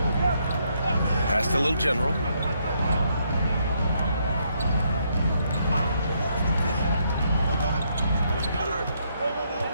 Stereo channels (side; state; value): both; inverted; correlation -0.74